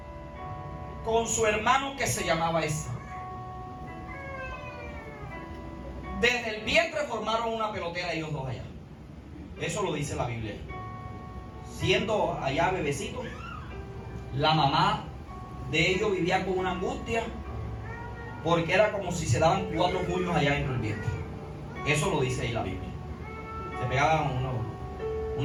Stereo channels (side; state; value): both; identical; correlation 1.00